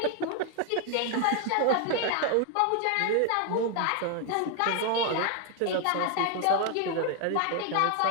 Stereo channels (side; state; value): both; different; correlation 0.01